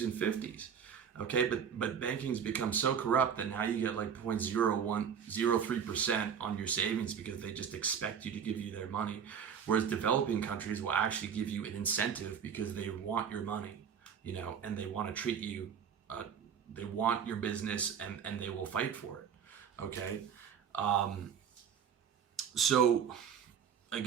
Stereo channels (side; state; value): left; quieter; 7.6 dB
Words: and 50s. Okay, but banking's become so corrupt that now you get like 0.0103% on your savings because they just expect you to give you their money. Whereas developing countries will actually give you an incentive because they want your money, and they want to treat you, they want your business and they will fight for it. Okay. So